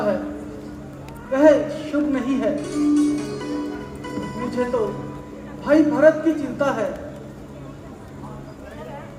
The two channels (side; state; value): both; identical; correlation 1.00